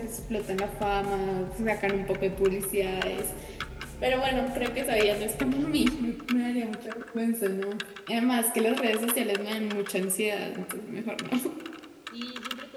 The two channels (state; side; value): identical; both; correlation 1.00